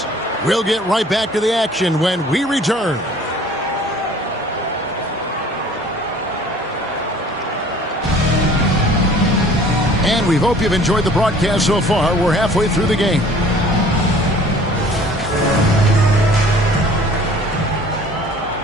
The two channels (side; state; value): both; normal; correlation 0.51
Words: We'll get right back to the action when we return. And we hope you've enjoyed the broadcast so far. We're halfway through the game.